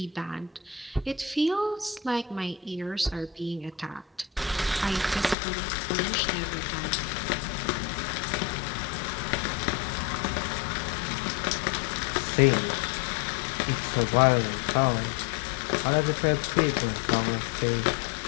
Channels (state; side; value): drops out; right; at 5.4 s